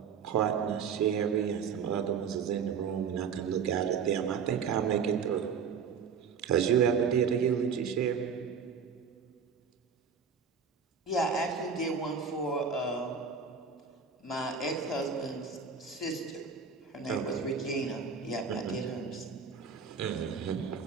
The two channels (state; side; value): quieter; left; 6.2 dB